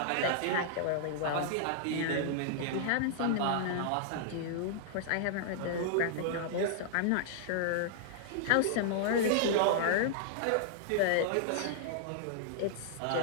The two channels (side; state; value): both; different; correlation -0.01